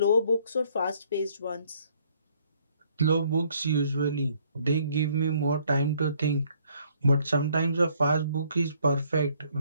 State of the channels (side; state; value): both; inverted; correlation -0.65